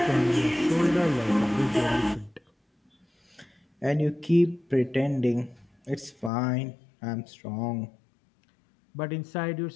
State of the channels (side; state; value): right; drops out; at 6.3 s